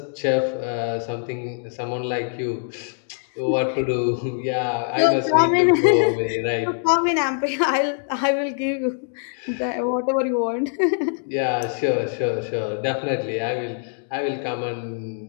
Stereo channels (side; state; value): right; silent; 63 dB below the other